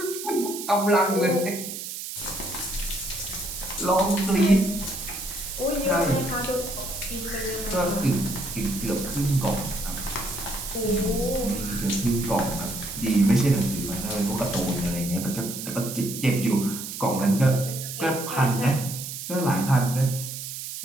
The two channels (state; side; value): noise; right; hiss, 8 dB below the sound